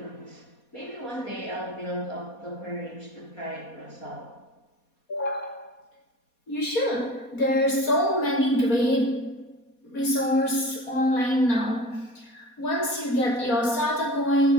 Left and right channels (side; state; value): right; late; 4.2 ms